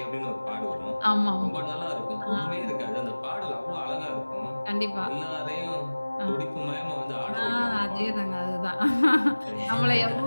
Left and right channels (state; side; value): inverted; both; correlation -1.00